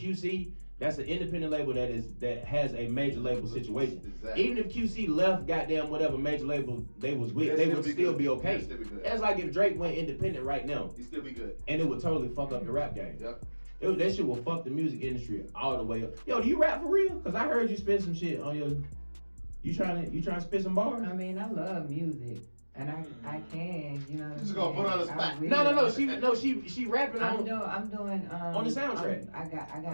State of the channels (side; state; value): both; inverted; correlation -1.00